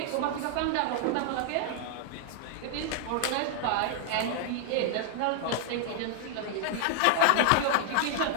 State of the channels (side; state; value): both; different; correlation 0.00